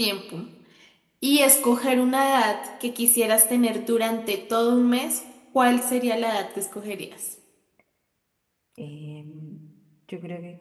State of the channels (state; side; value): identical; both; correlation 1.00